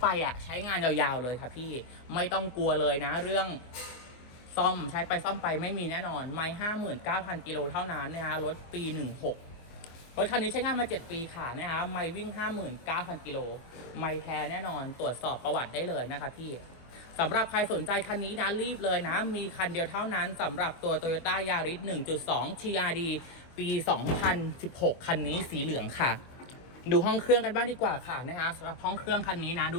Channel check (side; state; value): right; late; 24 ms